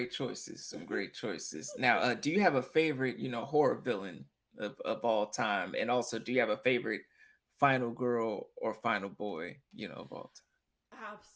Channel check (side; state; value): both; identical; correlation 1.00